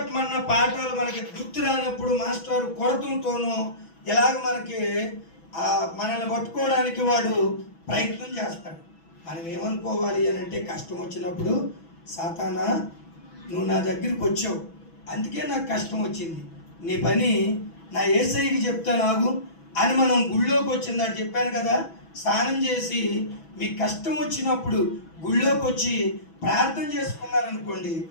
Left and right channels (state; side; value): late; right; 6.1 ms